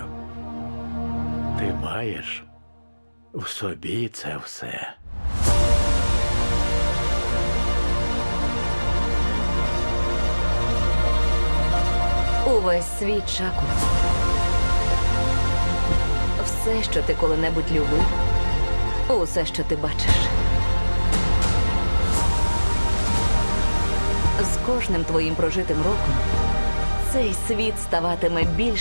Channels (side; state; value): both; inverted; correlation -1.00